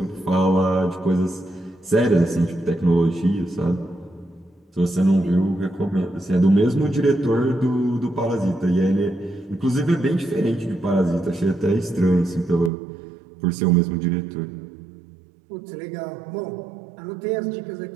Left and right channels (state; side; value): drops out; left; at 12.7 s